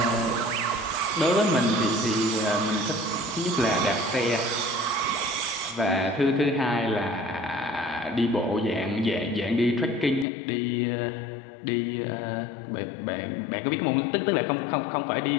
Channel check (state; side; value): drops out; right; at 10.2 s